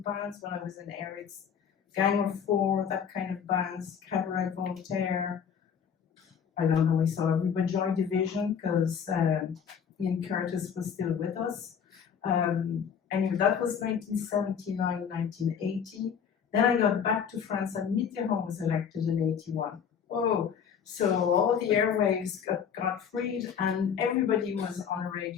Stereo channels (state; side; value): quieter; right; 7.5 dB